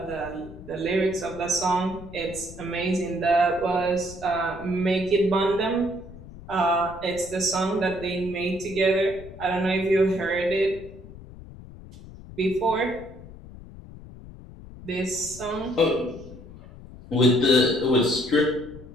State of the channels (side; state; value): left; noise; rumble, 16 dB below the sound